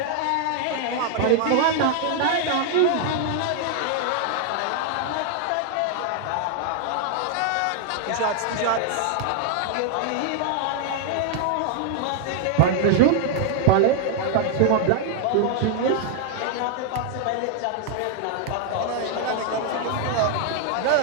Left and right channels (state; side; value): different; both; correlation 0.00